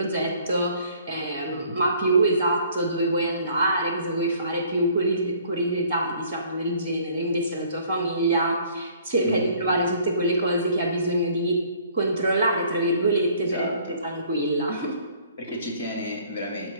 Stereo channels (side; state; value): both; inverted; correlation -0.57